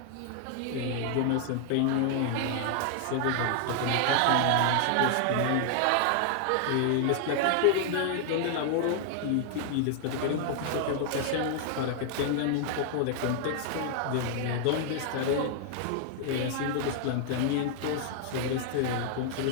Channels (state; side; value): different; both; correlation 0.00